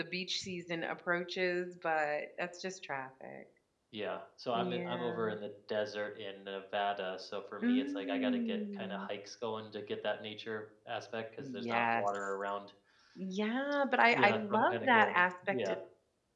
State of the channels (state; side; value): identical; both; correlation 1.00